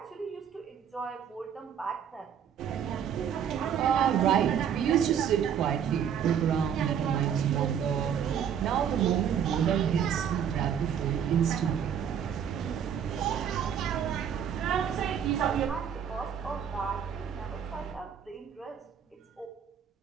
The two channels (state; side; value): quieter; left; 8.4 dB